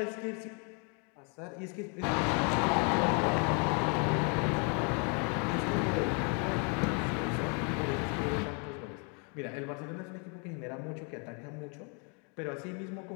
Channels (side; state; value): right; quieter; 36.7 dB